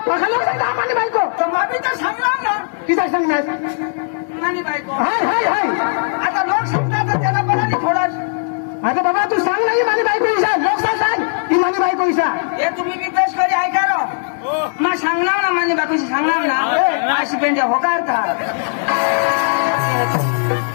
लोक सांगता मानी बायको तर मामी तर सांगणार ना तिचा सांगणार मानी बायको हाय आता लोक सांगतात तर त्याला बरा नाही थोडा आता बाबा तू सांग नाही मानी बायको इशा लोक सांग ही मानी बायको इशा हे तुम्ही बी पेश करी ऐका रो मग सांगणार ना मानी बायको सांगणार ना अशी पेंड्या होकार का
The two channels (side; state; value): right; silent; 68 dB below the other